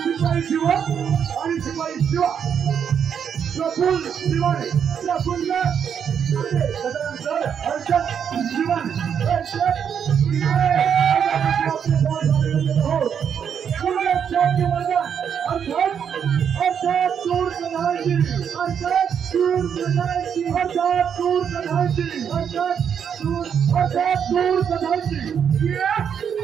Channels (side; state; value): left; quieter; 7.8 dB